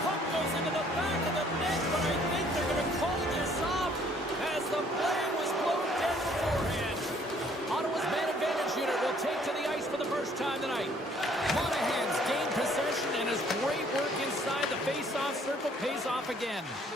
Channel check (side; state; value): both; normal; correlation 0.61